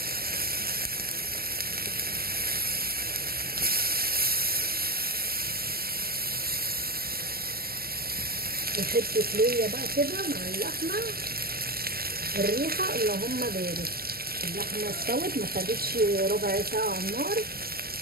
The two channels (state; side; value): late; left; 0.44 ms